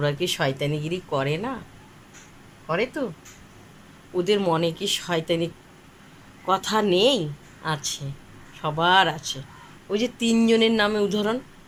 কি শয়তানিগিরি করে না? করে তো। ওদের মনে কি শয়তানি কথা নেই? আছে, সবার আছে। ওই যে তিনজনের নামে উদাহরণ,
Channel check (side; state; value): both; identical; correlation 1.00